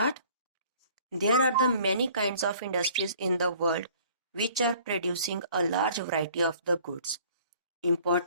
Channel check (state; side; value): inverted; both; correlation -0.54